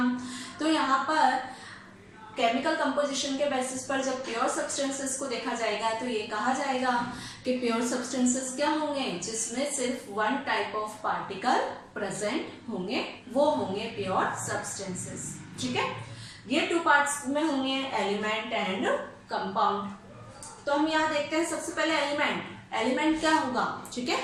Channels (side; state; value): both; identical; correlation 1.00